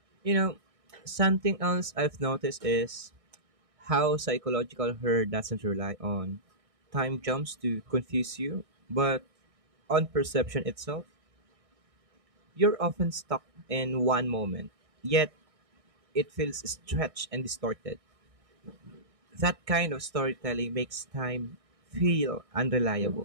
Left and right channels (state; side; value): late; left; 1.6 ms